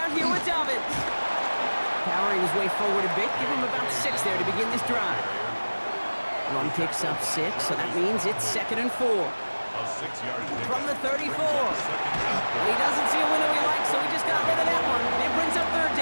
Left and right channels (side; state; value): both; inverted; correlation -1.00